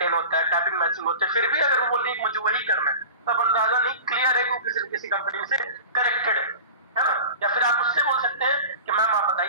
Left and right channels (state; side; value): inverted; both; correlation -0.35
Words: होता है, टैपिंग मैचिंग होते हैं, फिर भी अगर वो बोल रही है मुझे वही करना है, तब अंदाजा नहीं क्लियर है कि वो किसी कंपनी से कनेक्टेड है ना। या फिर आप उससे बोल सकते हैं कि मैम आप